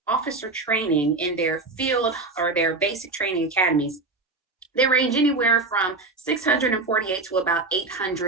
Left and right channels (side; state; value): left; quieter; 3.5 dB